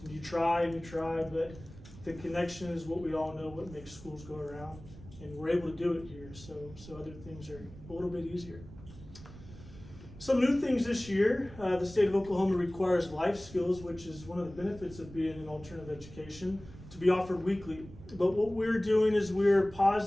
And you try, but the connection is what we all know what makes schools go around, and we're able to do it here, so other things are a little bit easier. Some new things this year, the state of Oklahoma requires life skills, which is one of the benefits of being in alternative education, to be offered weekly. But what we're doing is we're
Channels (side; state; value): right; noise; rumble, 17 dB below the sound